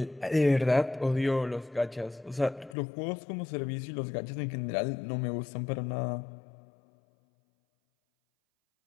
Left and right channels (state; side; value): drops out; right; at 2.8 s